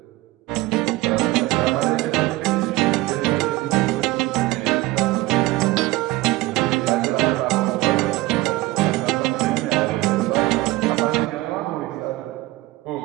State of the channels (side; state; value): left; quieter; 19.0 dB